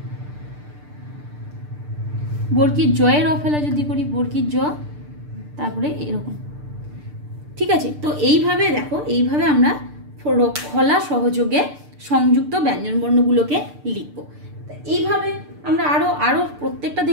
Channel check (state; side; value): late; left; 6.7 ms